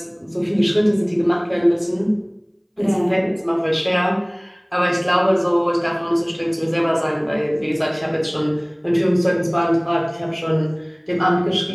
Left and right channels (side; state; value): both; identical; correlation 1.00